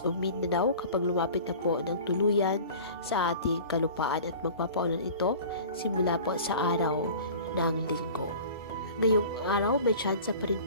o Mindanao kapag lumapit na po ng tuluyan sa ating kalupaan at magpapaulan ito simula po sa araw ng Linggo. Ngayong araw may tsansa pa rin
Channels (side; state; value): both; inverted; correlation -0.41